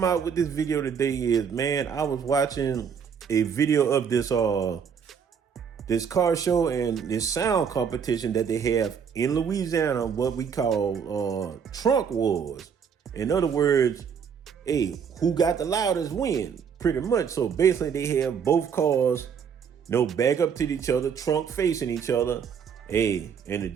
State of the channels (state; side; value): quieter; left; 7.0 dB